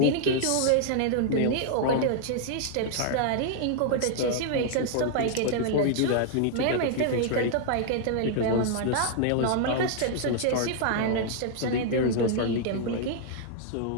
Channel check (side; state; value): both; different; correlation 0.00